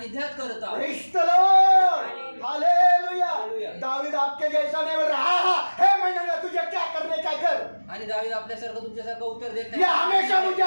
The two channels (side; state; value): both; inverted; correlation -1.00